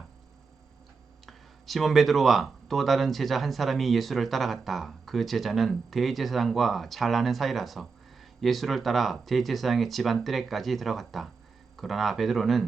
시몬 베드로와 또 다른 제자 한 사람이 예수를 따라갔다. 그 제자는 대제사장과 잘 아는 사이라서 예수를 따라 대제사장의 집안 뜰에까지 들어갔다. 그러나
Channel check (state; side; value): quieter; left; 4.9 dB